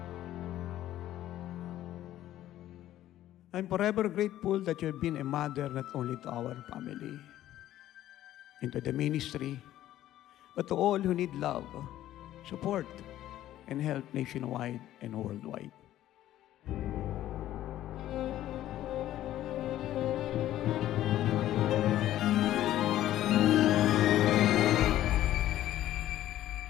forever grateful that you have been a mother not only to our family, into the ministry, but to all who need love, support, and help nationwide and worldwide.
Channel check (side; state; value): right; quieter; 13.3 dB